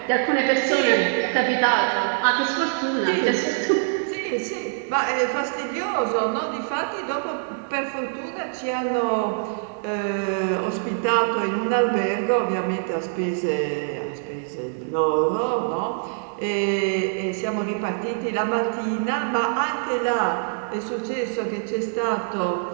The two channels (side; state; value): left; silent; 60 dB below the other